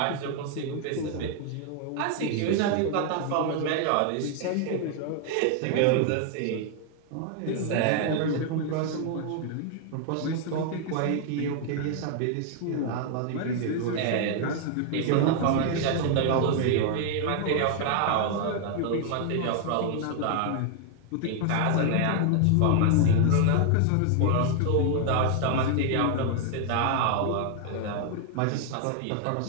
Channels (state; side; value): different; both; correlation 0.00